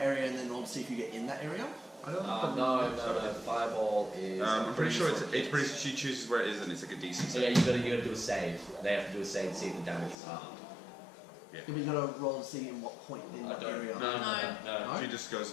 area and then roll to see if you get in that area? I don't No. Fireball is. I'm pretty sure it's pretty. She chooses where it is, and it's like a DC. So yeah, you gotta do a save. They have to do a save to see if the damage is harmed. Yeah, but you gotta roll to see in what point in I that don't. area. No. She just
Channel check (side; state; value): right; drops out; at 10.2 s